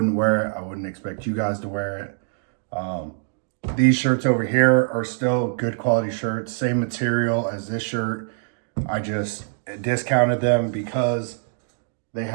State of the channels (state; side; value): silent; left; digital silence